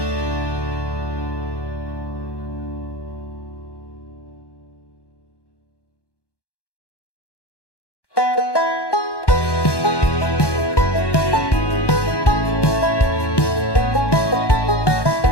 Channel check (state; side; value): late; right; 1.1 ms